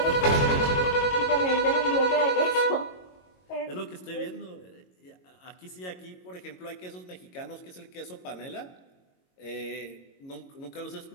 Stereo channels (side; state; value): right; late; 22 ms